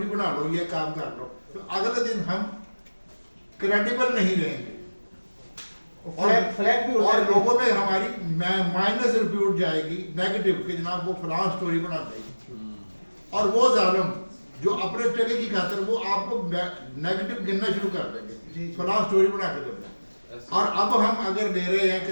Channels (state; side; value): inverted; both; correlation -1.00